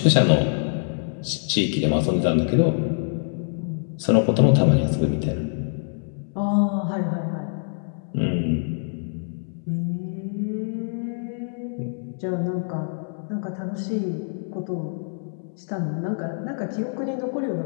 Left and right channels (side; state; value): right; silent; 62 dB below the other